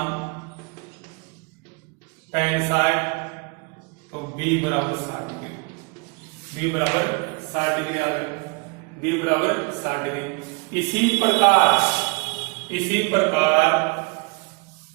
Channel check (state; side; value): quieter; left; 30.9 dB